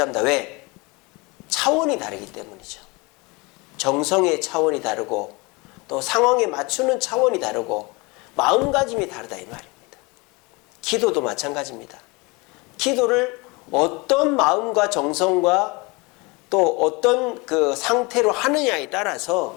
왜? 차원이 다르기 때문이죠. 정성의 차원이 다르고 또 상황에 맞추는 차원이 다르고 마음가짐이 다르다 이 말입니다. 기도도 마찬가지입니다. 기도를 어떤 마음과 정성과 또 어떤 그 상태로 하느냐에 따라서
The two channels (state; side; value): quieter; right; 26.4 dB